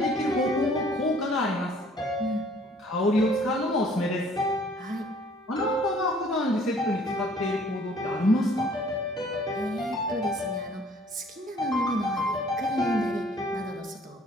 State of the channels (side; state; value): both; normal; correlation 0.57